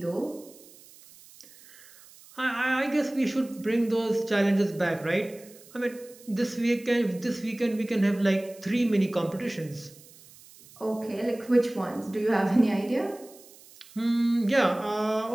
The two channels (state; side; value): noise; right; hiss, 23 dB below the sound